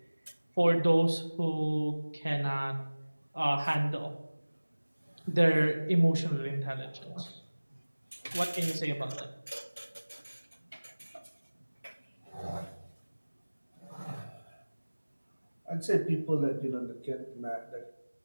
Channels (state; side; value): inverted; both; correlation -1.00